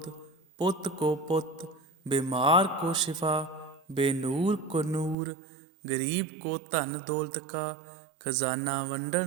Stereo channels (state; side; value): drops out; left; at 5.2 s